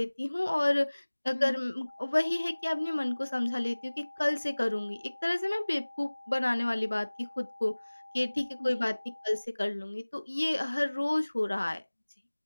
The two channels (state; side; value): inverted; both; correlation -1.00